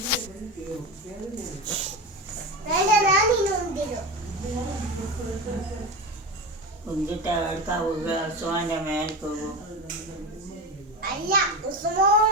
എന്നിട്ട് എടുക്കാവുക ഉസ്മാന്റെ മേൽ പോകും. അല്ല,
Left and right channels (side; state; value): both; normal; correlation 0.23